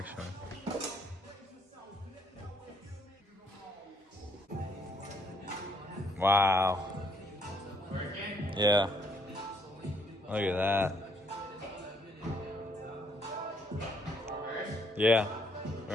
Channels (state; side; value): normal; both; correlation 0.68